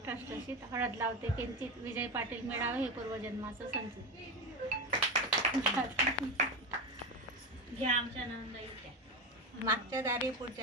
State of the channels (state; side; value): normal; both; correlation 0.18